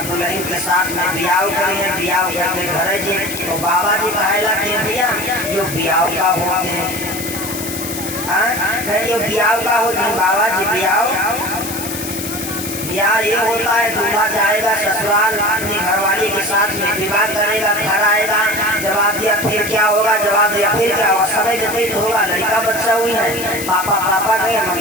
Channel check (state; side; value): noise; left; hiss, 8 dB below the sound